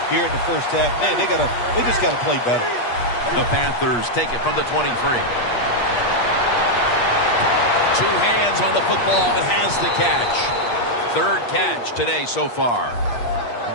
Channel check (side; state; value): right; late; 8.4 ms